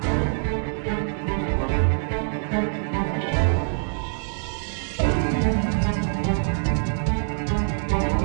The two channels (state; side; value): silent; left; digital silence